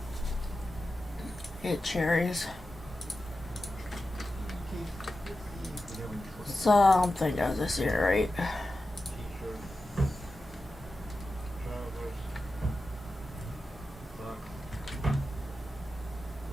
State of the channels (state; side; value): normal; both; correlation 0.92